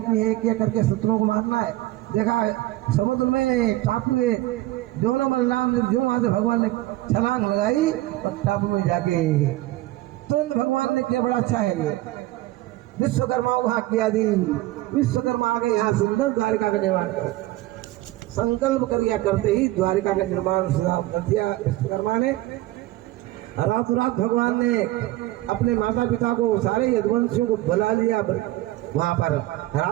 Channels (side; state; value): left; quieter; 17.1 dB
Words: एक एक करके शत्रुओं को मारना है। देखा समुद्र में टापू में दोनों बलराम जो वहां से भगवान ने छलांग लगाई और टापू में जाके तुरंत भगवान ने किया, बड़ा अच्छा है ये। विश्वकर्मा को हाथ किया दी। विश्वकर्मा आ गए, यहाँ सुंदर द्वारिका का निर्माण किया। संकल्प कर करते ही द्वारिका का निर्माण कर दिया विश्वकर्मा ने। रातों रात भगवान ने अपने माता पिता को, सारे यदुवंशियों को बुला लिया वहां पर।